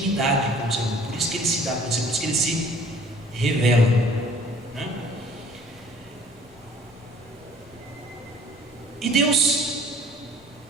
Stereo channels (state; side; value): noise; left; rumble, 29 dB below the sound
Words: com o Senhor, por isso que ele se dá com o Senhor, por isso que ele se revela, né? E Deus